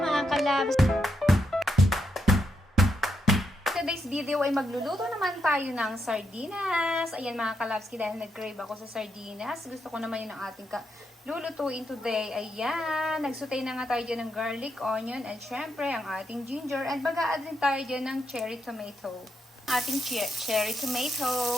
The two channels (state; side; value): normal; both; correlation 0.81